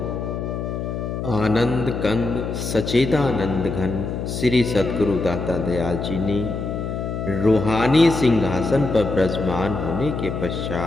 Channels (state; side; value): noise; left; hum, 4 dB below the sound